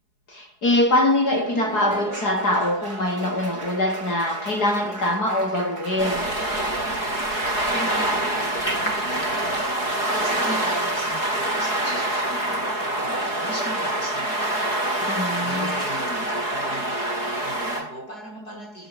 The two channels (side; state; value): right; late; 4.7 ms